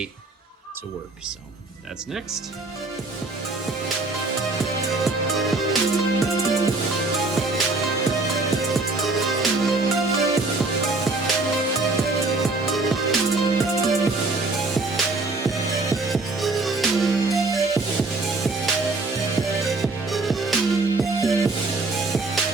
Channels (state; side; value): quieter; left; 3.3 dB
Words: to work. So that's next.